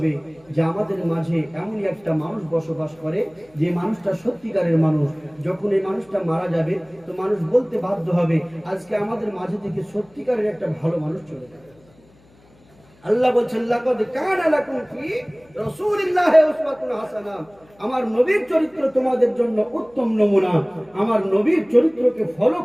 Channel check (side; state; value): left; noise; hum, 30 dB below the sound